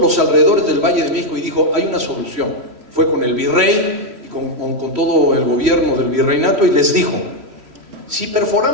alrededores del Valle de México, y dijo: hay una solución. Fue con el virrey y con todo el gobierno del virreinato y les dijo: si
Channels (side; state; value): left; late; 3.1 ms